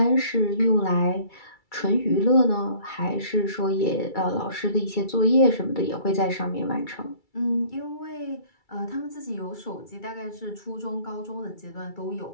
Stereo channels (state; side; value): late; right; 2.3 ms